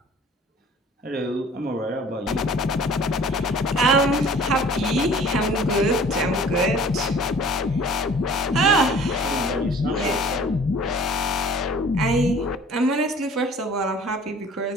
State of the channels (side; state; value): both; normal; correlation 0.50